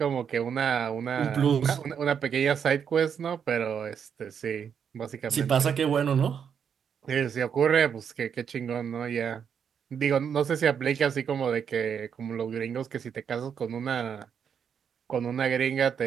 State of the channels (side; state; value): left; quieter; 7.5 dB